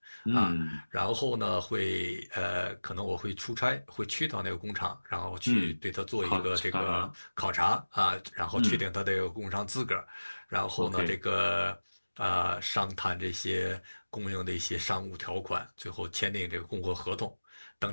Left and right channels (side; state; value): both; inverted; correlation -1.00